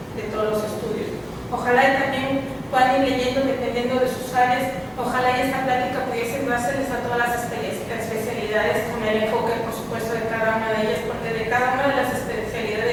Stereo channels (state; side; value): identical; both; correlation 1.00